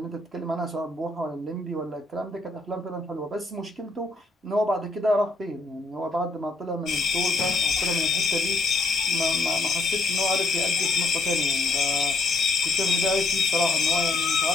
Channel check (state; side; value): quieter; right; 3.2 dB